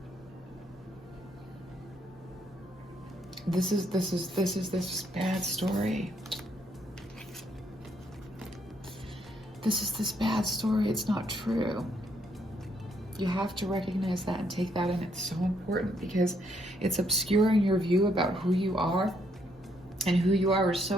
this is this bad story. This is this bad story. It's not true. You have to recognize that and take that in. It's so important because it's obscuring your view about who you are, and who you are is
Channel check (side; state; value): both; normal; correlation 0.72